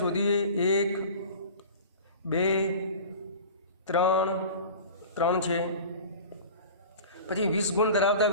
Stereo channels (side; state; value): both; inverted; correlation -0.38